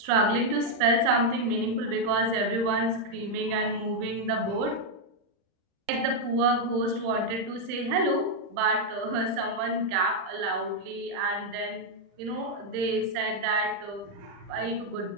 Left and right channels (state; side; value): late; left; 40 ms